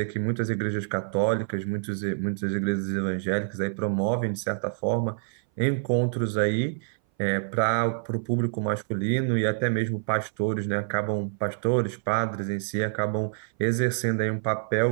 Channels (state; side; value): silent; left; 58 dB below the other